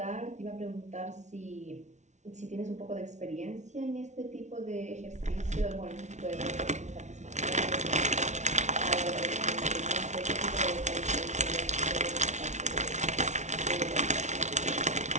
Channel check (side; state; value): left; late; 0.33 ms